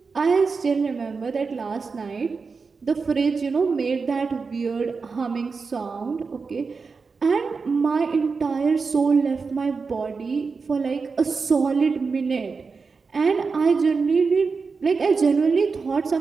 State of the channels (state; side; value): quieter; left; 4.8 dB